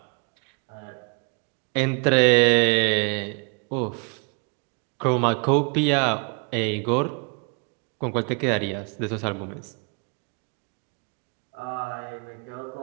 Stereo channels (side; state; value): left; quieter; 36.2 dB